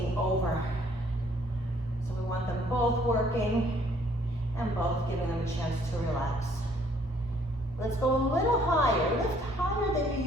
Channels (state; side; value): normal; both; correlation 0.62